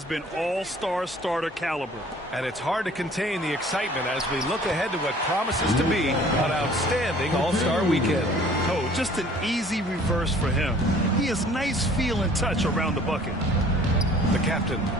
been all-star starter caliber. And it's hard to contain the excitement as we look ahead to what promises to be an outstanding All-Star weekend. Oh, just an easy reverse for him. He has nice feel and touch around the bucket. The captain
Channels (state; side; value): normal; both; correlation 0.52